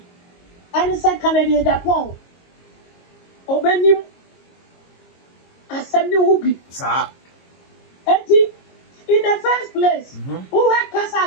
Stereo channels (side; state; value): right; late; 22 ms